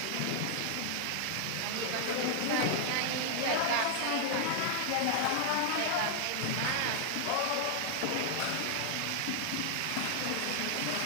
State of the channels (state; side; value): different; both; correlation -0.01